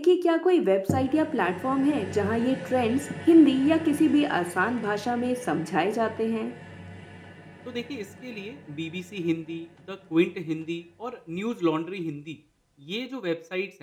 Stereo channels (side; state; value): both; identical; correlation 1.00